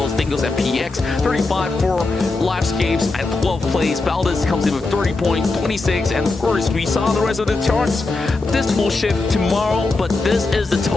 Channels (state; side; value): quieter; right; 3.4 dB